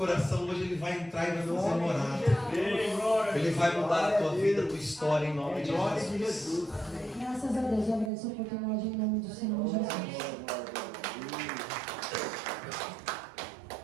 hoje, ele vai entrar e vai fazer morada. Ele vai mudar a tua vida, a tua história, em nome de Jesus. Graças a Deus, eu agradeço a oportunidade em nome do Senhor Jesus.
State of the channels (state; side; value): drops out; left; at 8.1 s